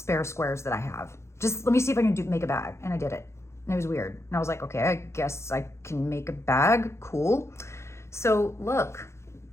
squares that I have. Just let me see if I can make a bag. And I did it. And it was weird. And I was like, okay, I guess I can make a bag. Cool. So look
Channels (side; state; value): right; late; 0.13 ms